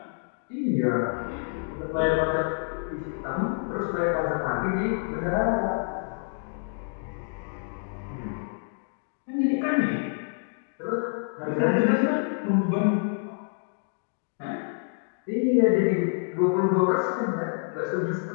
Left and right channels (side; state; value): right; silent; 60 dB below the other